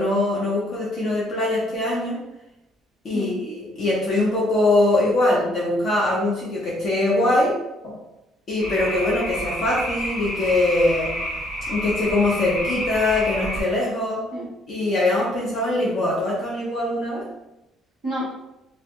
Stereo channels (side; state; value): both; normal; correlation 0.67